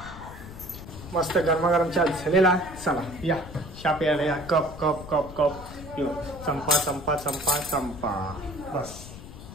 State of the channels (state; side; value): noise; left; rumble, 14 dB below the sound